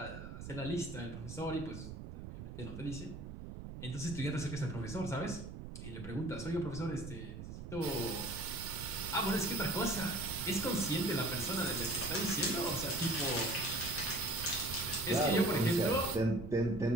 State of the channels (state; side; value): noise; right; rumble, 9 dB below the sound